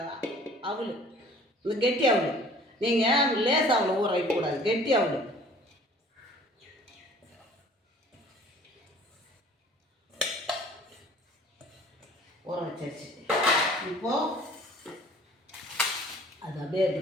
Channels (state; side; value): normal; both; correlation 0.50